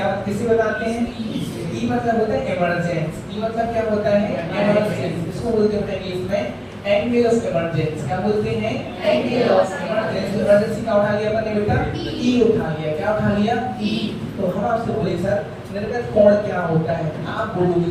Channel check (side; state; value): both; identical; correlation 1.00